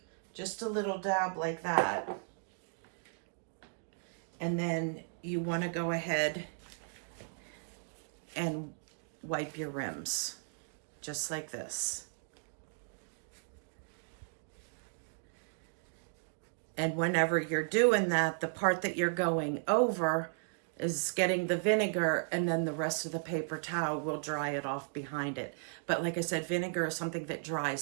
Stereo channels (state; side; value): silent; left; digital silence